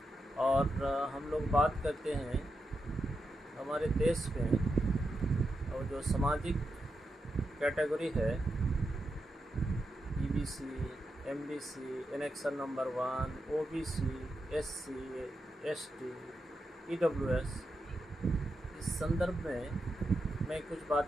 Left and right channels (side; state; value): both; normal; correlation 0.87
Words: और हम लोग बात करते हैं हमारे देश में और जो सामाजिक कैटेगरी है EBC, MBC, annexure number 1, OBC, SC, ST, EWS। इस संदर्भ में मैं कुछ